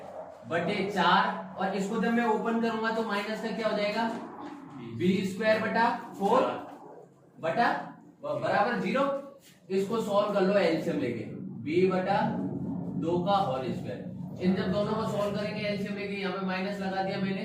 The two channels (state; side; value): identical; both; correlation 1.00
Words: बटे 4, और इसको जब मैं ओपन करूंगा तो माइनस का क्या हो जाएगा बी स्क्वायर बटा 4 बटा बराबर 0। इसको सॉल्व कर लो एलसीएम लेके, बी बटा 2 का होल स्क्वायर, इन जब दोनों को सॉल्व करेंगे एलसीएम लेके, यहाँ पे माइनस लगा दिया मैंने,